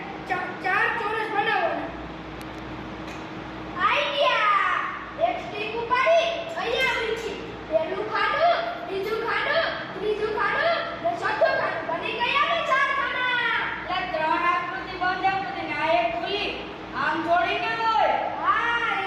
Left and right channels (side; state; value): both; identical; correlation 1.00